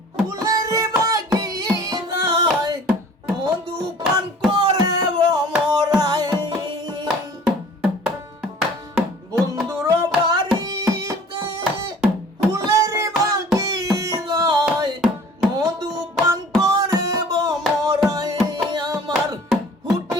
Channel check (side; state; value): both; normal; correlation 0.49